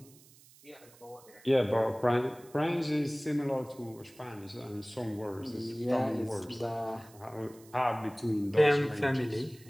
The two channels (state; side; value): noise; right; hiss, 25 dB below the sound